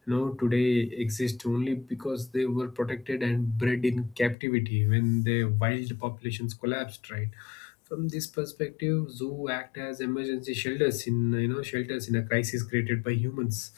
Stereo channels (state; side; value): drops out; right; at 4.4 s